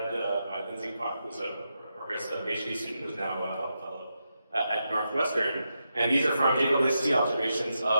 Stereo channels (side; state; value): both; inverted; correlation -0.86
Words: by Lindsay Kwok, who's a progress PhD student who's now a fellow at Northwestern. And these are from JWST observations